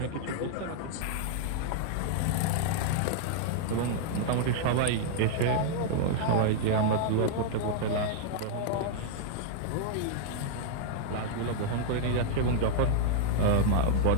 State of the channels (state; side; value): different; both; correlation -0.01